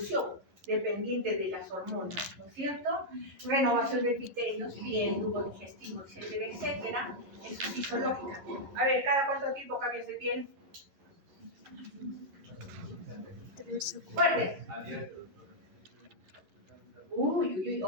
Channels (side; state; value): left; late; 11 ms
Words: dependiente de las hormonas, ¿no es cierto? Renovación de epitelios, piel, tubo digestivo, etcétera, etcétera. Eso es fisiológica. A ver, ¿cada cuánto tiempo cambias de piel? Fuerte. Uy,